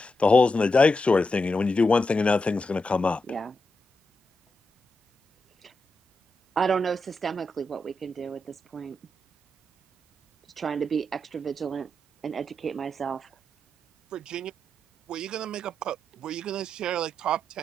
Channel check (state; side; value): normal; both; correlation 0.86